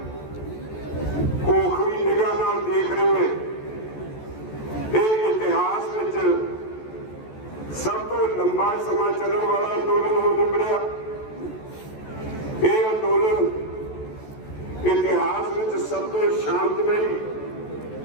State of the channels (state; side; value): late; right; 14 ms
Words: ਕੋਖਵੀ ਨਿਗਾਹ ਨਾਲ ਦੇਖ ਰਹੀ ਹੈ। ਇਹ ਇਤਿਹਾਸ ਵਿੱਚ ਸਭ ਤੋਂ ਲੰਬਾ ਸਮਾਂ ਚੱਲਣ ਵਾਲਾ ਅੰਦੋਲਨ ਹੋ ਨਿਬੜਿਆ। ਇਹ ਅੰਦੋਲਨ ਇਤਿਹਾਸ ਵਿੱਚ ਸਭ ਤੋਂ ਸ਼ਾਂਤਮਈ